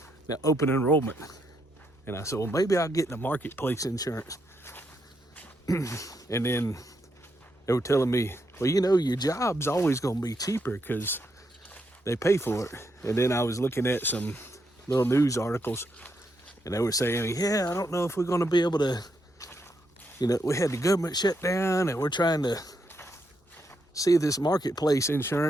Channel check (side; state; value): both; normal; correlation 0.79